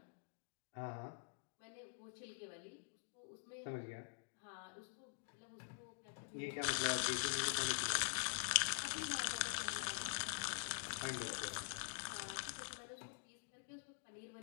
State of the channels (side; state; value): right; silent; digital silence